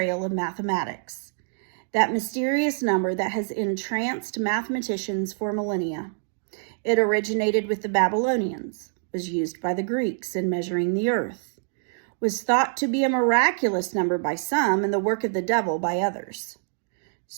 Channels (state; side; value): silent; left; digital silence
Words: of mathematics. that mysterious number that has entranced mathematicians for millennia. It originated with the Babylonians, was used by the Greeks in measuring the earth, was thought to be a miraculous number by some and the work of the devil by others.